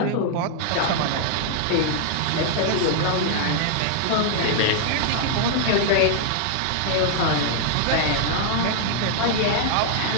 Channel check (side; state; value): both; different; correlation 0.00